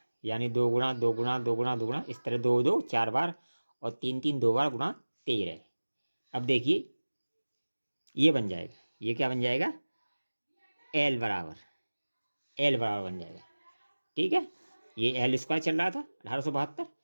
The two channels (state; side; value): inverted; both; correlation -1.00